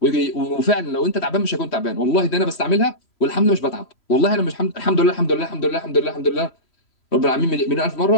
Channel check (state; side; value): late; right; 3.0 ms